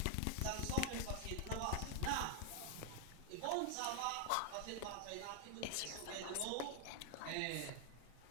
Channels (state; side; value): different; both; correlation 0.00